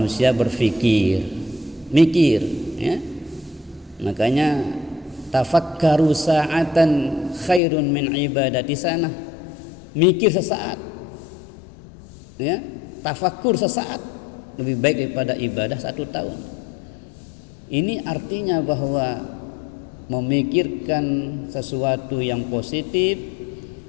berfikir, mikir, ya. Makanya tafakkaru sa'atan khairun min ibadati sana. Mikir sesaat, ya, tafakkur sesaat lebih baik daripada ibadah 1 tahun. Ini artinya bahwa memikirkan sesuatu yang positif,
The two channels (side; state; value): right; drops out; at 7.6 s